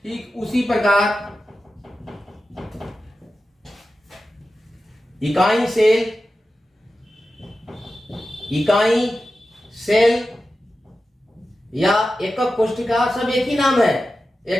इकाई सेल या एकक कोशिका, सब एक ही नाम है।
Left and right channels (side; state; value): both; normal; correlation 0.93